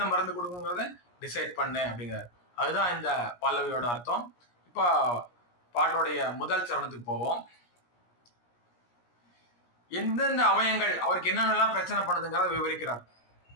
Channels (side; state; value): right; late; 17 ms